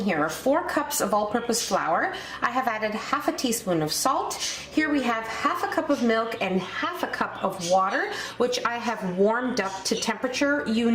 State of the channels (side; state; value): both; identical; correlation 1.00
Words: are 4 cups of all-purpose flour. I have added half a teaspoon of salt. Here we have half a cup of milk and half a cup of water, which I have warmed up to temperature. You